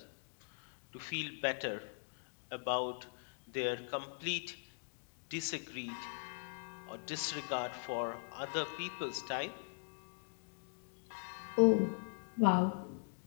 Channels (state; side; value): silent; right; digital silence